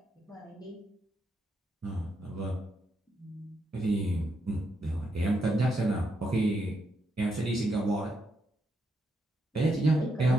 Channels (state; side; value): normal; both; correlation 0.80